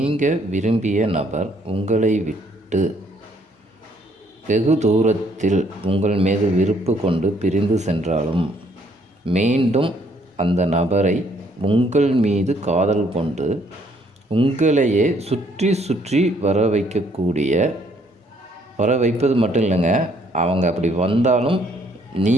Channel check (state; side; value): normal; both; correlation 0.66